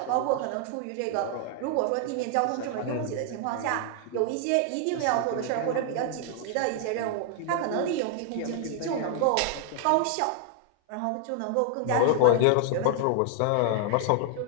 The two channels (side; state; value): both; different; correlation 0.00